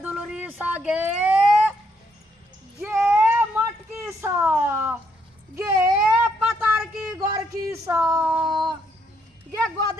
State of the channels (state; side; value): normal; both; correlation 0.73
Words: दुलरी सा गे मटकी सा गे पतार की गोर की सा गे